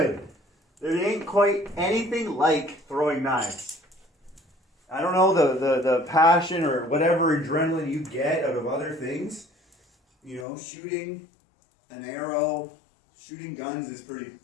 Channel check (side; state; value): right; drops out; at 10.5 s